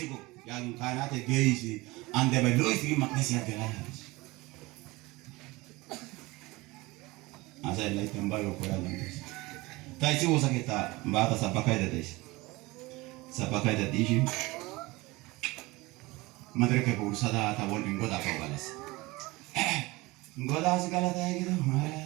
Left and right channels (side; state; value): left; quieter; 22.0 dB